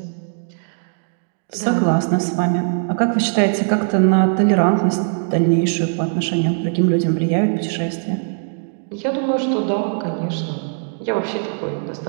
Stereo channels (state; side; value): silent; left; 61 dB below the other